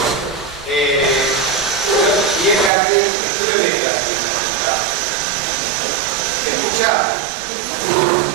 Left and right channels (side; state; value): left; drops out; at 2.7 s